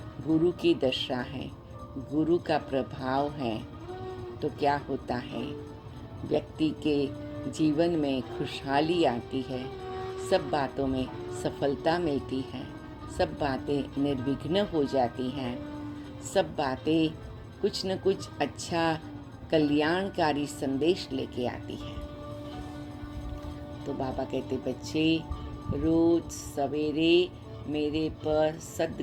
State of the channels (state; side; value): identical; both; correlation 1.00